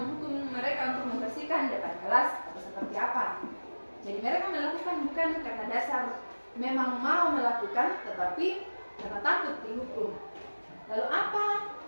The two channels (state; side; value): inverted; both; correlation -1.00